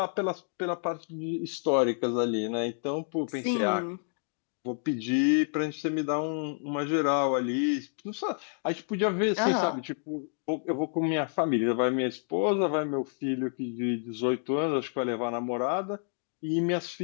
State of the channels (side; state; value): right; silent; 58 dB below the other